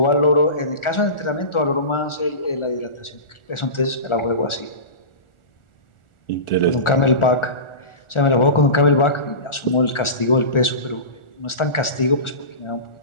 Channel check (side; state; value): right; late; 1.4 ms